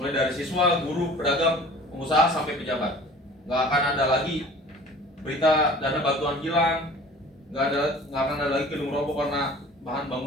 dari siswa, guru, pedagang, pengusaha, sampai pejabat. Gak akan ada lagi berita dana bantuan hilang, nggak akan ada lagi gedung roboh karena bahan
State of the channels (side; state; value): both; normal; correlation 0.45